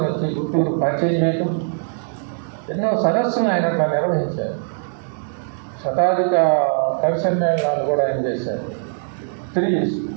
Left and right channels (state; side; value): silent; left; digital silence